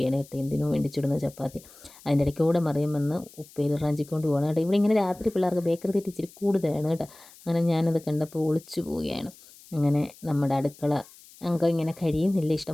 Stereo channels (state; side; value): noise; left; hiss, 23 dB below the sound